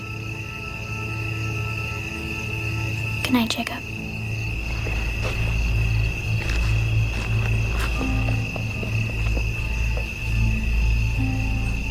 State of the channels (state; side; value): identical; both; correlation 1.00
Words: Good night, Jacob.